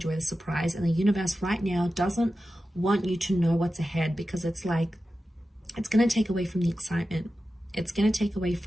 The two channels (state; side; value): normal; both; correlation 0.93